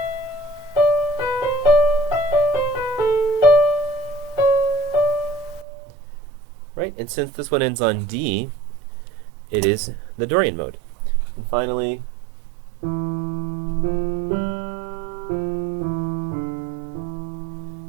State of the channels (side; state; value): left; drops out; at 5.7 s